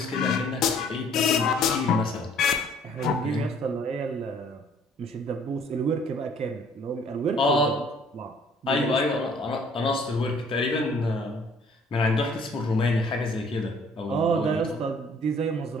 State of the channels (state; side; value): normal; both; correlation 0.57